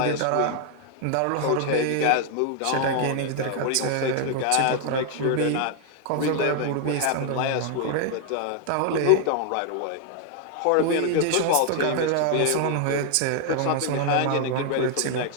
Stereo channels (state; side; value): different; both; correlation 0.00